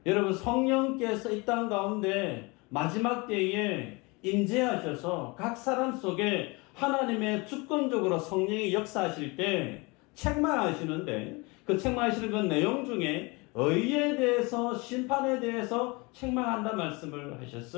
여러분, 성령께서 이 땅 가운데 마지막 때에 임재하셔서 각 사람 속에 하나님의 주권적으로 성령이 역사하실 때 책망하시는데, 그 책망하시는 그 내용 중에 의에 대해서, 심판에 대해서 책망한다 말씀을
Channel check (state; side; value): quieter; right; 26.7 dB